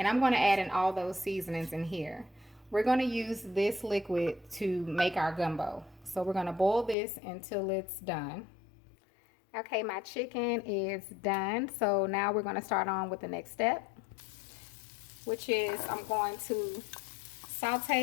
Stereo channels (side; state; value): right; drops out; at 7.0 s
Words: I'm going to add in all those seasonings in here. We're going to use this liquid to make our gumbo. So we're going to boil this until it's done. Okay, my chicken is done. So now we're going to start on with the next step, which is I'm going to